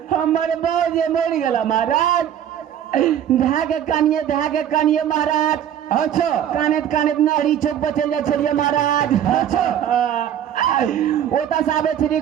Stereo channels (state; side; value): quieter; left; 10.1 dB